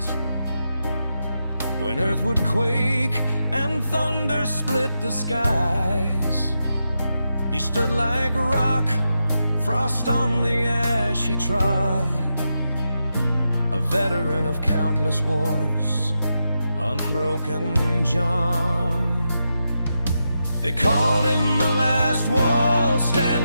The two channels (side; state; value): both; inverted; correlation -0.87